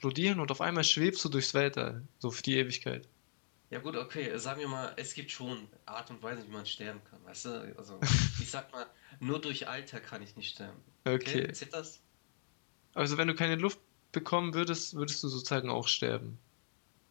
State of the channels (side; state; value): right; silent; digital silence